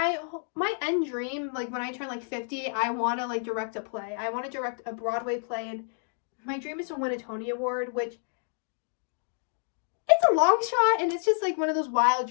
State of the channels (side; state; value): right; silent; digital silence